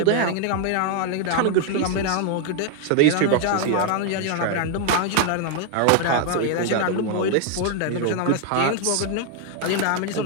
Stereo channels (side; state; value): both; different; correlation 0.00